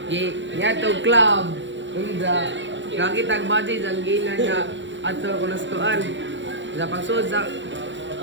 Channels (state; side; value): late; left; 0.54 ms